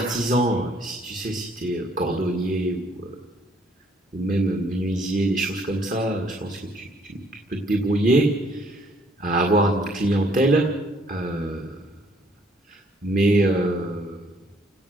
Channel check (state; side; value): normal; both; correlation 0.64